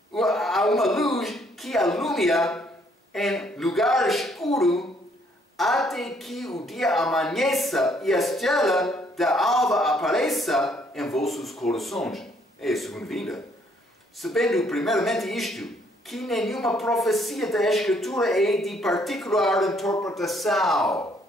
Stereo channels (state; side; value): normal; both; correlation 0.67